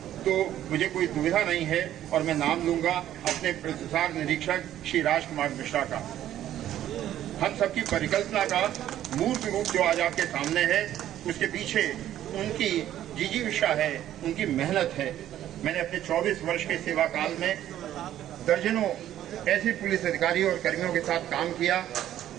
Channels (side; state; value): left; quieter; 12.1 dB